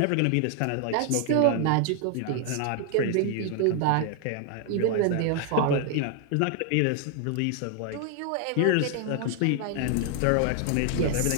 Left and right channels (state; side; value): different; both; correlation 0.00